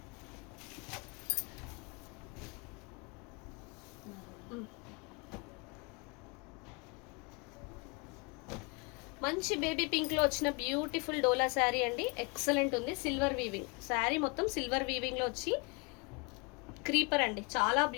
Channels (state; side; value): quieter; right; 30.4 dB